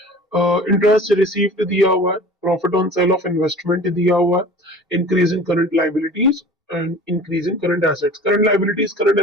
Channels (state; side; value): normal; both; correlation 0.41